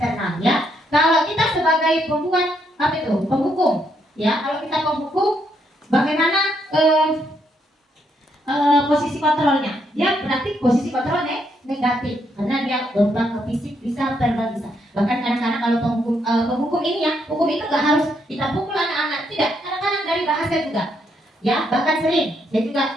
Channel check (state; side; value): normal; both; correlation 0.76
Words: ya. Kalau kita sebagai pembuat penghukum ya, kalau kita penghukum bagaimana posisi kontrolnya? Ya berarti posisi kontrolnya negatif karena dia berupa ke fisik, bisa verbal, bisa. Bahkan kadang-kadang kalau penghukum ini ya, hukum itu nggak harus kita pukul anak-anak, tidak. Kadang-kadang dari bahasa juga. Ya, bahkan sering saya juga